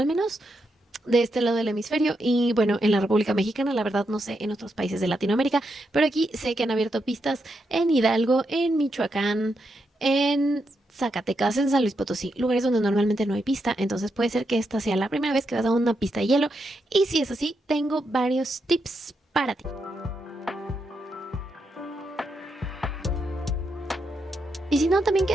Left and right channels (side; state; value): both; normal; correlation 0.83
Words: menos de este lado del hemisferio y bueno, en la República Mexicana, la verdad no sé en otros países de Latinoamérica, pero aquí sé que han abierto pistas en Hidalgo, en Michoacán, en Zacatecas, en San Luis Potosí, lugares donde normalmente no hay pista, entonces puede ser que esta sea la primera vez que vas a una pista de hielo y si es así, tengo varios tips para ti. Y si no, también